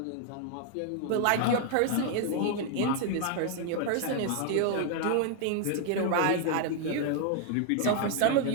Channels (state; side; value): different; both; correlation 0.00